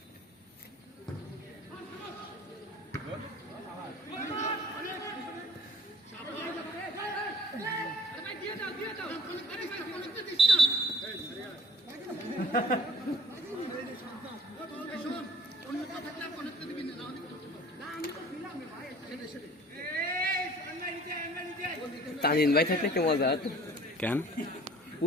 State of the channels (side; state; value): both; normal; correlation 0.52